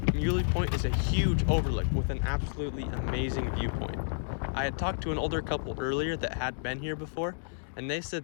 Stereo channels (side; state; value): right; silent; digital silence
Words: Muley Point is a huge overlook with an absolutely amazing viewpoint. I had talked to an older couple earlier that had been here before, and they